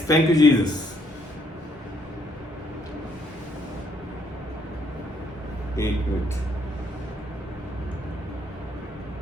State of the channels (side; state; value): both; normal; correlation 0.69